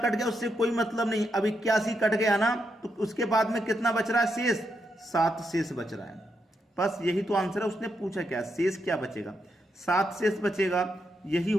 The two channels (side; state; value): both; normal; correlation 0.82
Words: कट गया उससे कोई मतलब नहीं। अब 81 कट गया ना, तो उसके बाद में कितना बच रहा है? शेष 7 शेष बच रहा है। बस यही तो आंसर है। उसने पूछा क्या? शेष क्या बचेगा? 7 शेष बचेगा, यही